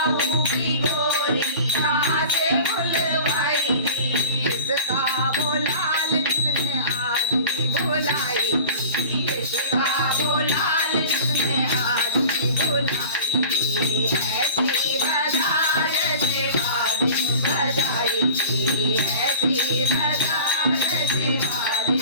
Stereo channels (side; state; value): both; inverted; correlation -0.39